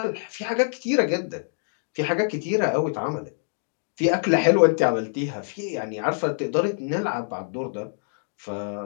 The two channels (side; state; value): right; silent; digital silence